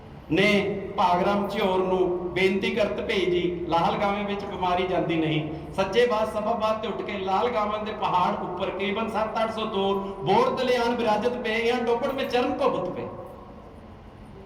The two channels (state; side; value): identical; both; correlation 1.00